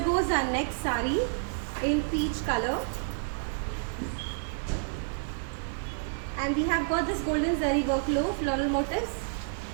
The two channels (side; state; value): left; silent; digital silence